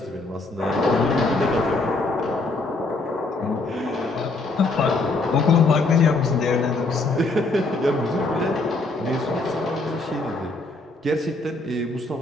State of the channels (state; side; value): quieter; right; 3.2 dB